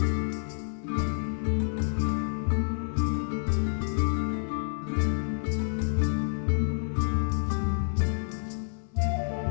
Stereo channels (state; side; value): silent; right; 59 dB below the other